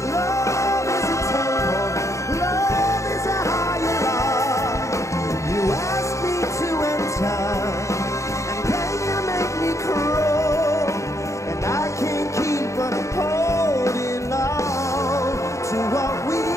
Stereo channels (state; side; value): late; right; 0.15 ms